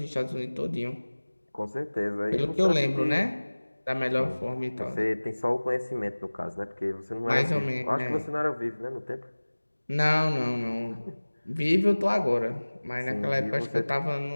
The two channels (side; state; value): both; inverted; correlation -1.00